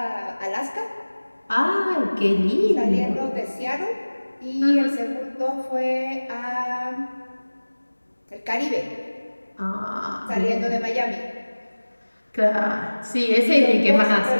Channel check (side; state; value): both; inverted; correlation -1.00